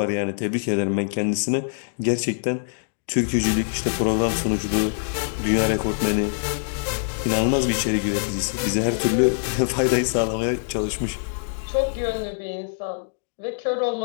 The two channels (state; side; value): silent; right; digital silence